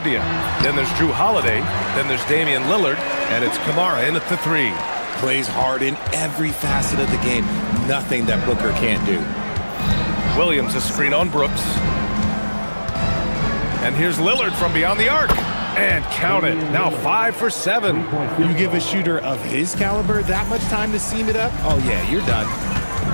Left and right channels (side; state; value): both; inverted; correlation -1.00